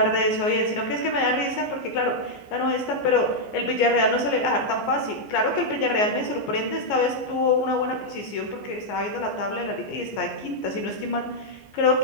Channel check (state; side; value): late; right; 14 ms